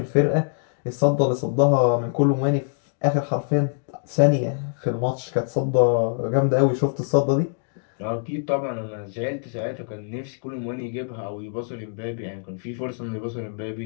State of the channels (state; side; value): silent; right; digital silence